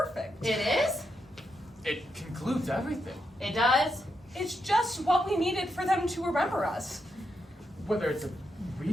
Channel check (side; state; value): both; normal; correlation 0.83